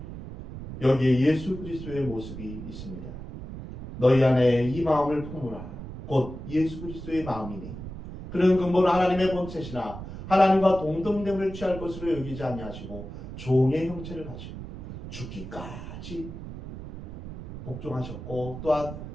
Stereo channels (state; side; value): noise; right; rumble, 11 dB below the sound